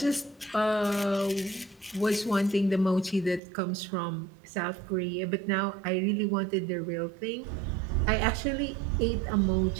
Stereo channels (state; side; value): drops out; left; at 3.4 s